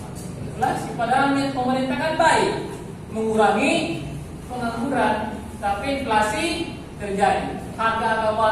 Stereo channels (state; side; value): identical; both; correlation 1.00